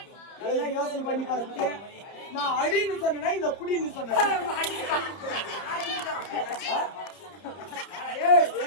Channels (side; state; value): right; late; 30 ms